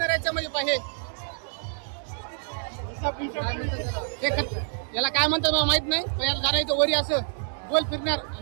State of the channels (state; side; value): silent; left; 60 dB below the other